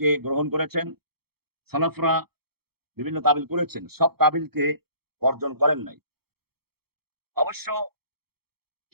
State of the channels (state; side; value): late; left; 0.96 ms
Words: গ্রহণ করেছেন। সালাফরা বিভিন্ন তাবিল করেছেন, সব তাবিলকে বর্জন করেন নাই। অবশ্য